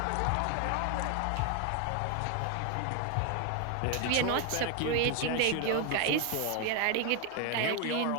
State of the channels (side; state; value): both; different; correlation 0.01